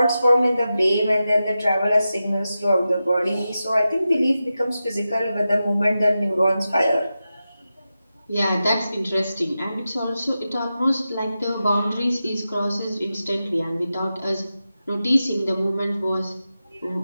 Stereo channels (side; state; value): both; inverted; correlation -0.92